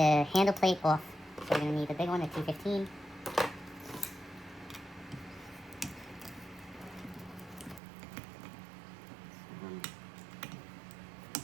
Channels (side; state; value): left; drops out; at 7.8 s